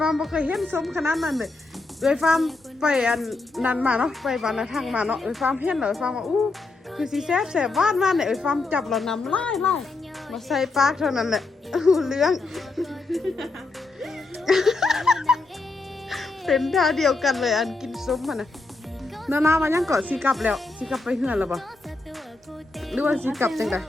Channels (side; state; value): right; quieter; 3.4 dB